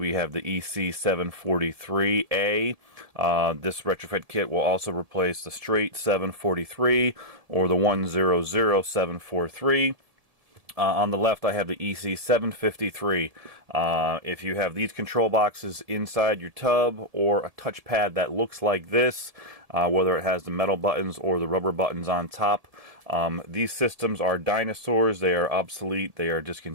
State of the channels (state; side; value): late; left; 1.7 ms